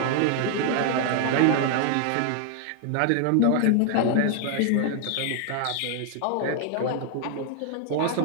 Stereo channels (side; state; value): both; different; correlation 0.00